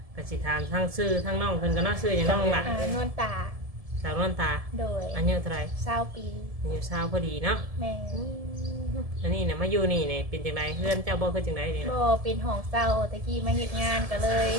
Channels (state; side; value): late; left; 1.7 ms